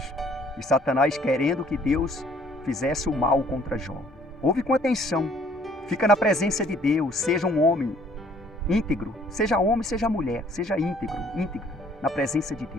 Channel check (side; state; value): both; normal; correlation 0.60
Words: E Satanás querendo que Deus fizesse o mal contra Jó. Ouve com atenção. Fica na presença de Deus. Seja um homem íntegro. Seja homem, seja mulher. Seja íntegro na presença de